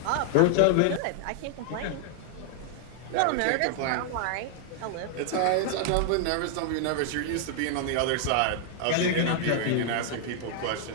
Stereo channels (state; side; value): different; both; correlation 0.00